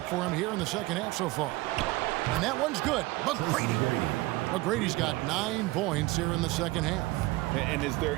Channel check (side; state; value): left; quieter; 20.5 dB